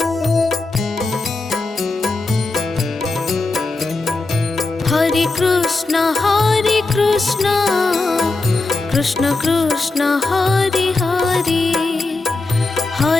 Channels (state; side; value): quieter; right; 3.5 dB